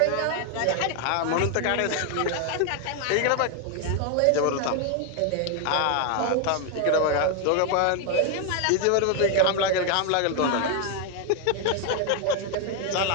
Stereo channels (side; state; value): both; different; correlation 0.00